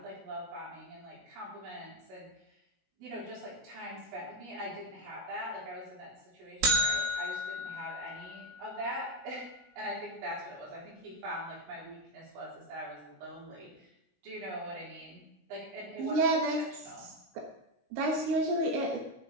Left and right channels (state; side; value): late; left; 16 ms